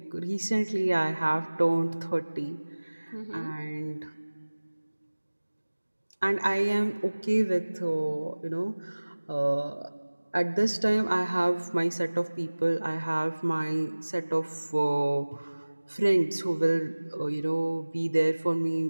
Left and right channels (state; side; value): inverted; both; correlation -1.00